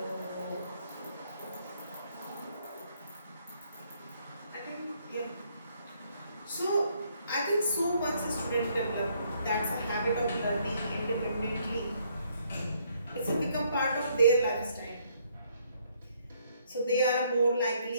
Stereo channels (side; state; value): both; inverted; correlation -0.68